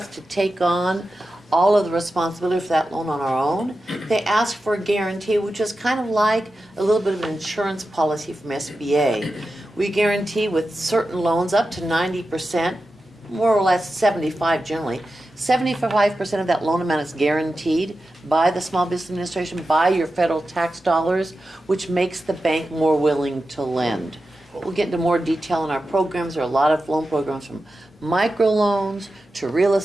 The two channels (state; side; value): normal; both; correlation 0.92